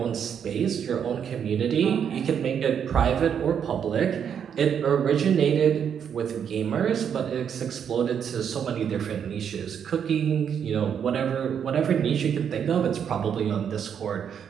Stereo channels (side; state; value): left; quieter; 8.0 dB